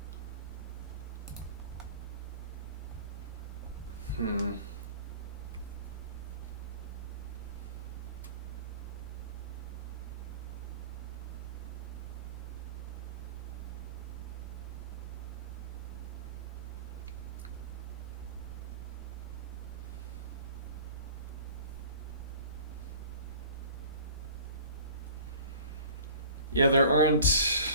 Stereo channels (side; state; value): both; inverted; correlation -0.44